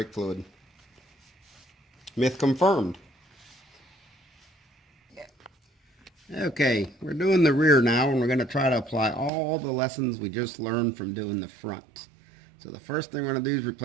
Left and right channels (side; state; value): left; drops out; at 9.3 s